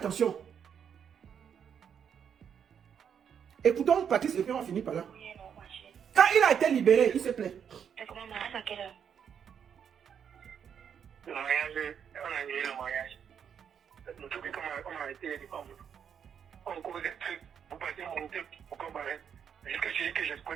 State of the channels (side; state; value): left; quieter; 7.9 dB